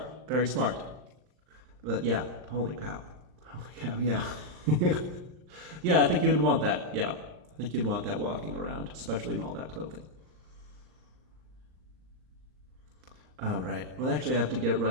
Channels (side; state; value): left; late; 39 ms